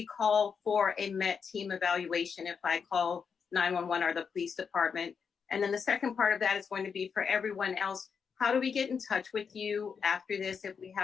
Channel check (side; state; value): right; quieter; 6.2 dB